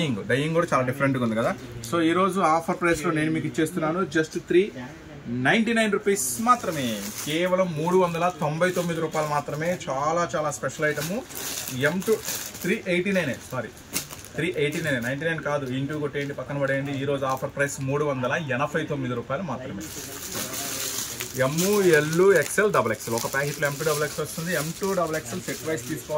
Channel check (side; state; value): both; identical; correlation 1.00